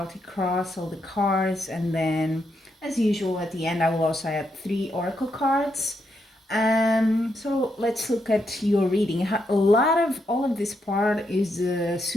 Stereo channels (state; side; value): normal; both; correlation 0.80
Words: cross, all the cards, and then as usual at the end I will also add 3 oracle cards. So let's look at your reading. A lot of all of this part is the